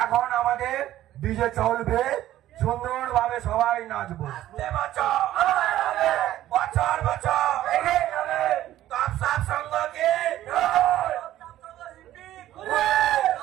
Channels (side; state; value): left; quieter; 13.6 dB